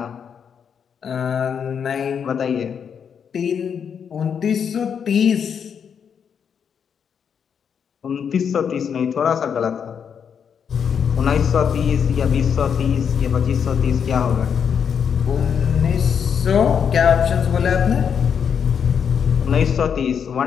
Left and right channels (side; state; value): right; quieter; 7.3 dB